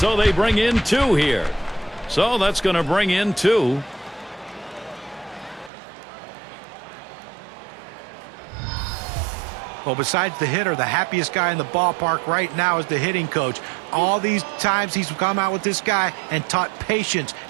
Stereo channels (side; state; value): left; drops out; at 5.7 s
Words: they bring in 2 here. So that's going to bring in 2. Well, besides the hitter, the happiest guy in the ballpark right now is the hitting coach. All these times he's come out with this guy and taught patience